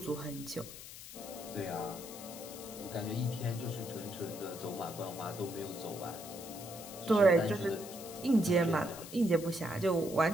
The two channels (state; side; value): noise; left; hiss, 13 dB below the sound